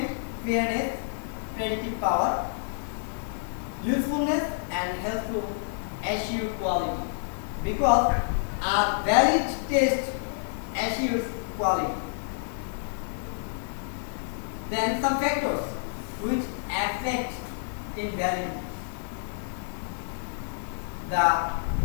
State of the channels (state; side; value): silent; right; digital silence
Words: fairness, predictive power, usefulness, and help to assure quality, because a valid test assures quality. Then some factors which affect invalidity. The